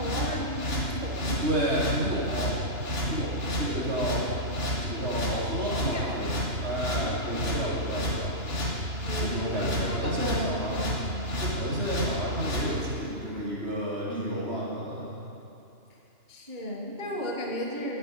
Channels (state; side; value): late; left; 2.9 ms